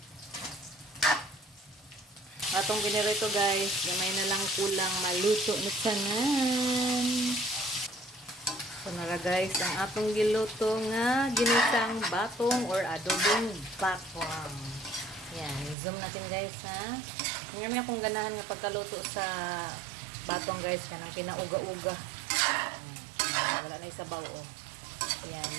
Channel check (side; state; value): left; drops out; at 15.8 s